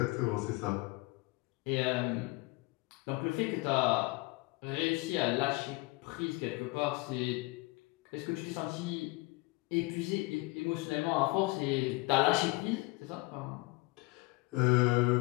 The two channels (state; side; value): quieter; right; 24.2 dB